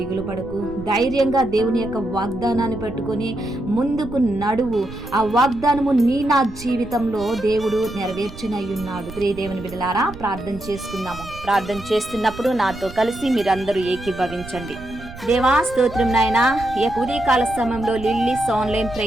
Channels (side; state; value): right; noise; rumble, 15 dB below the sound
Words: పడకు. ధైర్యంగా దేవుని యొక్క వాగ్దానాన్ని పట్టుకొని ముందుకు నడువు. ఆ వాగ్దానము నా జీవితంలో దేవుడు నెరవేర్చునై ఉన్నాడు. ప్రియ దేవుని బిడ్డలారా, ప్రార్థన చేసుకుందాము. ప్రార్థన చేస్తున్నప్పుడు నాతో కలిసి మీరందరూ ఏకీభవించండి. దేవా స్తోత్రం నాయనా, ఈ యొక్క ఉదయకాల సమయంలో లిల్లీస్ ఆన్లైన్